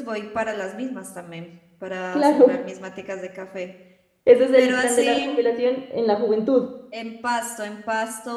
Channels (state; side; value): identical; both; correlation 1.00